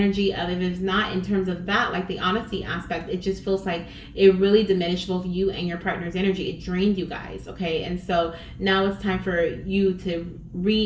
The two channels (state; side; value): identical; both; correlation 1.00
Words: of, if it's not in terms of that, like the honesty aspect, it just feels like it really diminished both you and your partner's energy. It drained you guys, okay? And so now it's time for you to